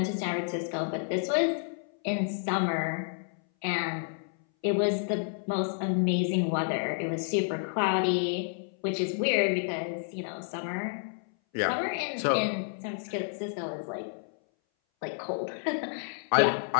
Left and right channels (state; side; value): silent; right; 58 dB below the other